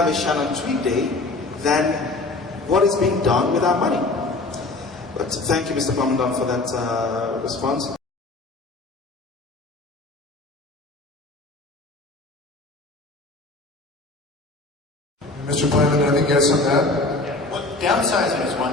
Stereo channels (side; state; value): right; quieter; 3.1 dB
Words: a Shannon Tweed Day than what is being done with our money. But thank you, Mr. Plamondon, for that response. Mr. Plamondon, anything else on that? Yeah. Well, downsizing is